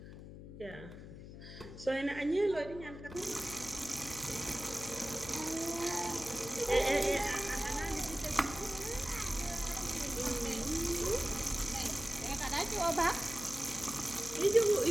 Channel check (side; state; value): left; noise; hum, 13 dB below the sound